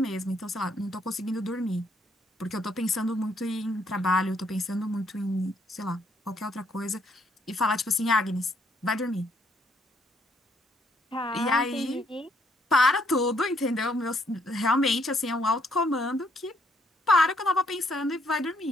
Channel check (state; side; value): normal; both; correlation 0.70